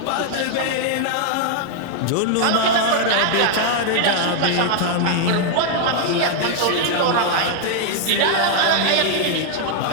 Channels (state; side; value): different; both; correlation 0.00